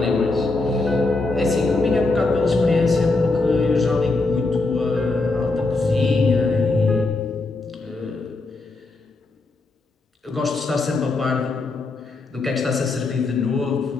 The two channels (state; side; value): quieter; right; 3.4 dB